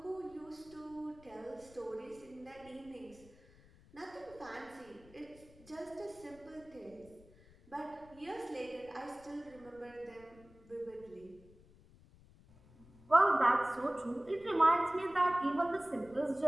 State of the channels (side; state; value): left; noise; rumble, 24 dB below the sound